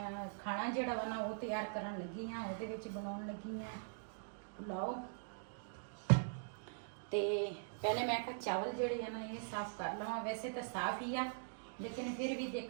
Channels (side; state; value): left; silent; digital silence